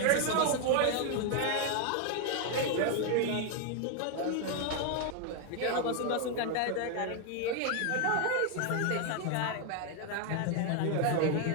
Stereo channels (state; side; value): different; both; correlation 0.01